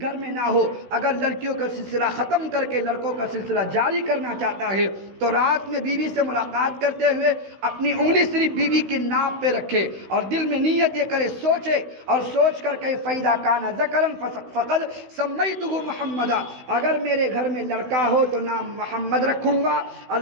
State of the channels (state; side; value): late; left; 16 ms